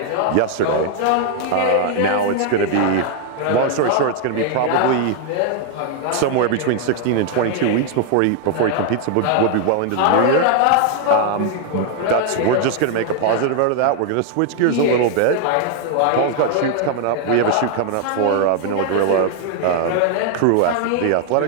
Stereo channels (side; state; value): both; different; correlation 0.00